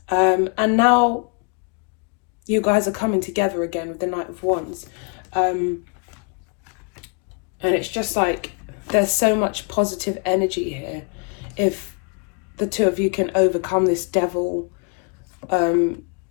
And now you guys are coming together again with the Knight of Wands. And it's just like, there's so much positive energy here. If the two of you can overcome this devil,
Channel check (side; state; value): right; quieter; 37.1 dB